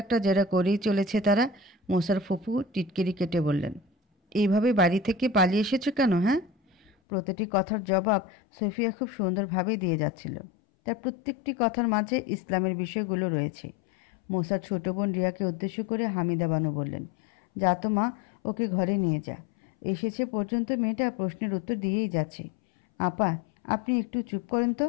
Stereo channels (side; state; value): right; drops out; at 6.9 s